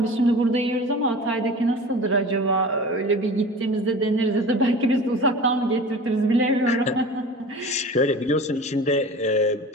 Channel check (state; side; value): normal; both; correlation 0.37